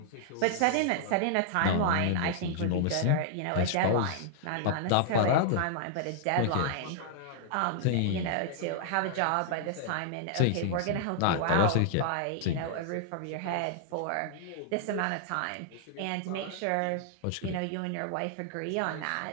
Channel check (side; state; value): both; different; correlation -0.01